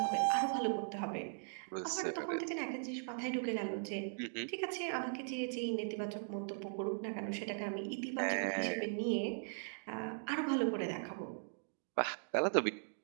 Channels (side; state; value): left; silent; digital silence